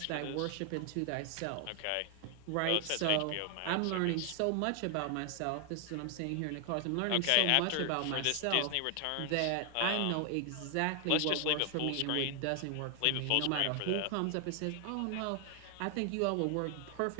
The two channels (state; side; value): different; both; correlation 0.00